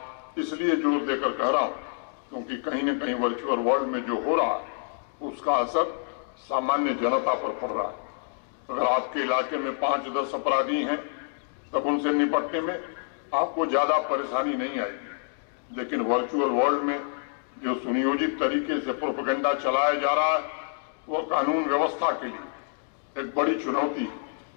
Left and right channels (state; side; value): silent; right; digital silence